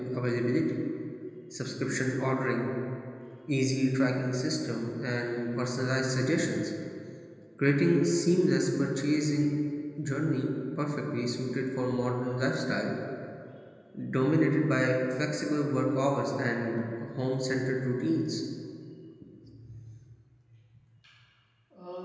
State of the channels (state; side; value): identical; both; correlation 1.00